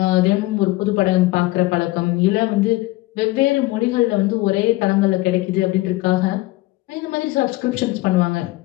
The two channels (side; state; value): right; quieter; 19.4 dB